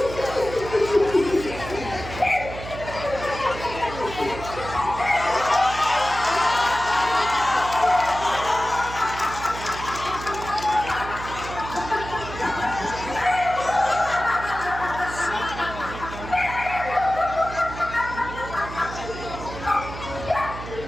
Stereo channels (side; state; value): right; noise; hum, 11 dB below the sound